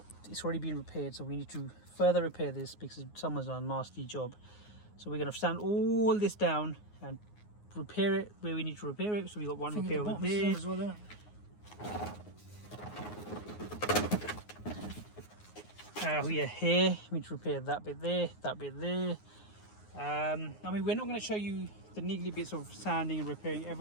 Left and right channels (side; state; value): right; late; 9.6 ms